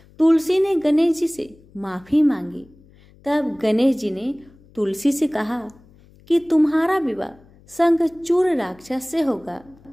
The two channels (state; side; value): noise; left; hum, 27 dB below the sound